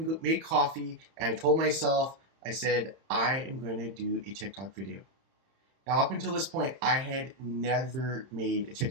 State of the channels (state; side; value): late; left; 31 ms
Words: made coffee, and I told myself, I said, I am going to do a TikTok video. Now, up until this point, I had never made a